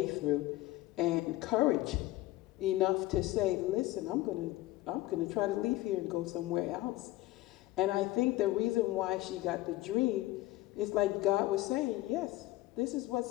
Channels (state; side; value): quieter; right; 17.4 dB